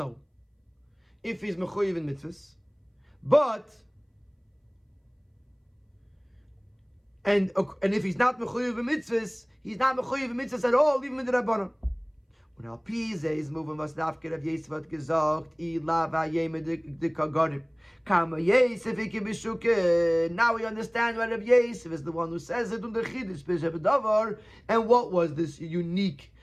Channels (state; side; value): identical; both; correlation 1.00